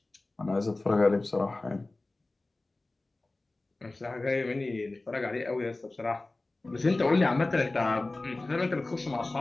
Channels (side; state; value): right; quieter; 3.0 dB